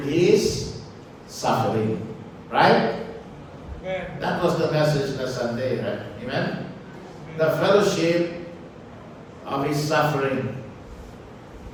His suffering. Right? Amen. That was the message last Sunday, right? Amen? The fellowship of His suffering.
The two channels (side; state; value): both; identical; correlation 1.00